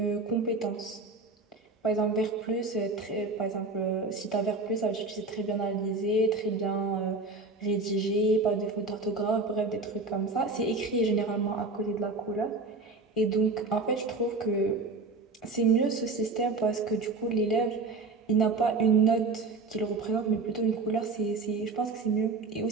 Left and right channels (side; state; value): left; quieter; 3.7 dB